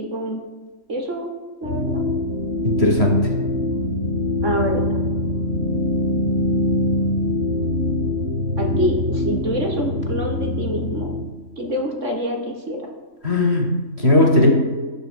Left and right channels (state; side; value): late; left; 3.0 ms